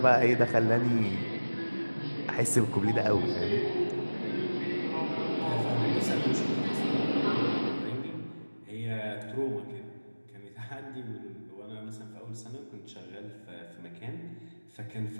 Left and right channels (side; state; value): both; inverted; correlation -1.00